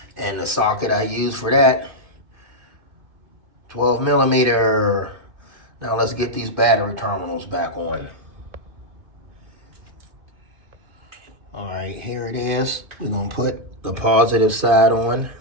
And the socket I use for that, 12 millimeter. Now let's get these battery terminals back on. All right, here it is. We're gonna put the positive side on.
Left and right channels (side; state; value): left; late; 2.5 ms